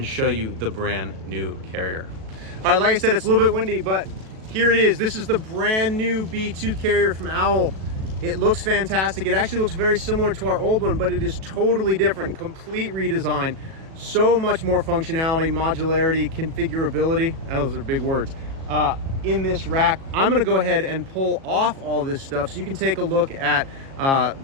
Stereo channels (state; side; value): late; left; 37 ms